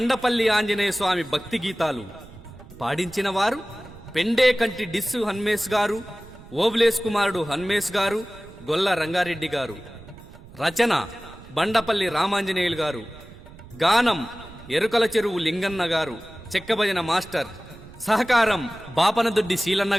ఆంజనేయ స్వామి భక్తి గీతాలు పాడించిన వారు పెండేకంటి డిస్సు హన్మేష్ గారు, ఓబులేస్ కుమారుడు హన్మేష్ గారు, గొల్ల రంగారెడ్డి గారు. రచన బండపల్లి రామాంజనేయులు గారు. గానం ఎరుకల చెరువు లింగన్న గారు, చెక్కభజన మాస్టర్. సహకారం బాపనదొడ్డి శీలన్న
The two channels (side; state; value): right; noise; rumble, 19 dB below the sound